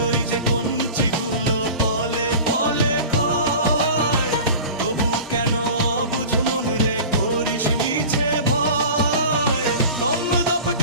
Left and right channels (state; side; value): inverted; both; correlation -0.36